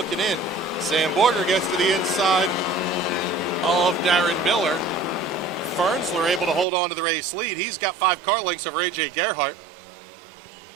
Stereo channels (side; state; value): left; drops out; at 6.7 s